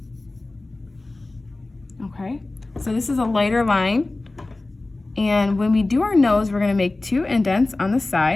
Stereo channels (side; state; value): right; quieter; 3.0 dB